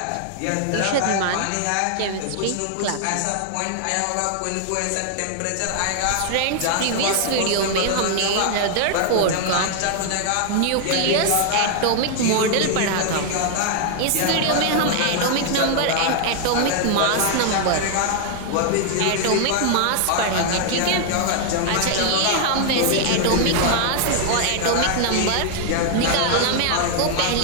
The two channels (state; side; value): different; both; correlation 0.00